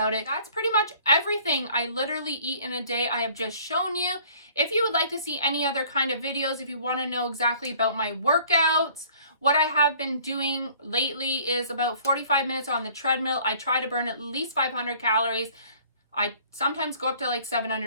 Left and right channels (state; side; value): inverted; both; correlation -0.54